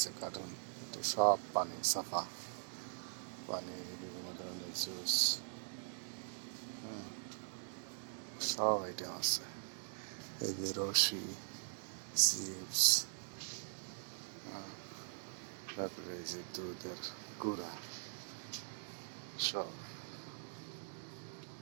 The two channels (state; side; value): silent; left; digital silence